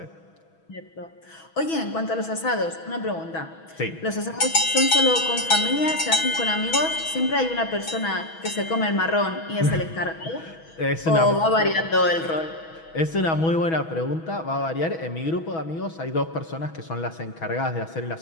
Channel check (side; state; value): right; late; 6.2 ms